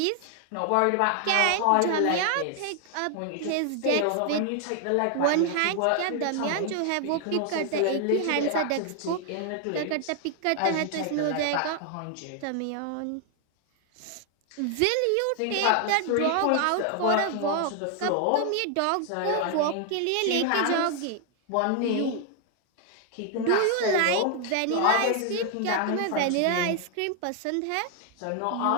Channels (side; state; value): both; different; correlation 0.00